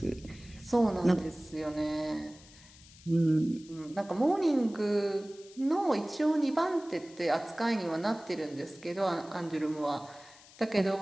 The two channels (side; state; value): left; noise; hiss, 22 dB below the sound